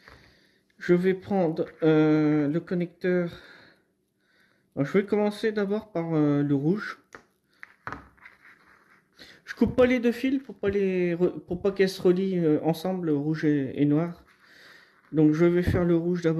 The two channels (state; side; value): identical; both; correlation 1.00